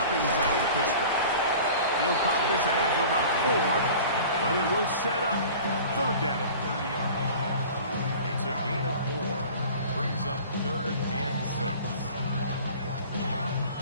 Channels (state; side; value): inverted; both; correlation -0.42